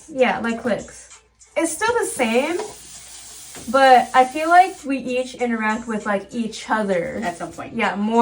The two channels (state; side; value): identical; both; correlation 1.00